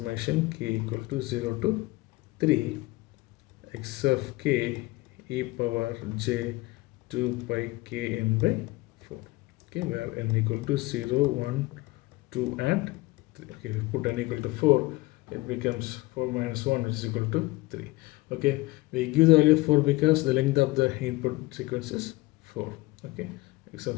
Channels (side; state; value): right; quieter; 20.9 dB